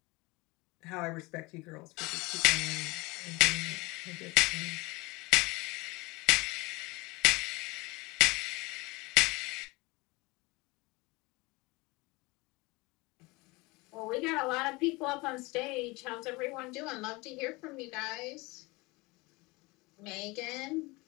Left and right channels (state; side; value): quieter; right; 24.1 dB